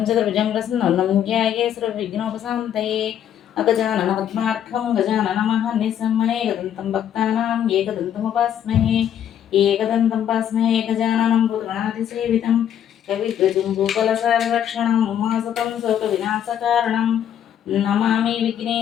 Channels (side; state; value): right; quieter; 9.8 dB